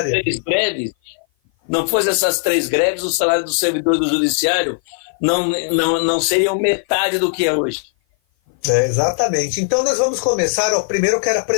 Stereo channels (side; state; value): right; silent; 55 dB below the other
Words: 3 greves, não fosse essas 3 greves, o salário do servidor do Judiciário não seriam metade do que é hoje. Exatamente. Então nós vamos começar. Primeiro eu quero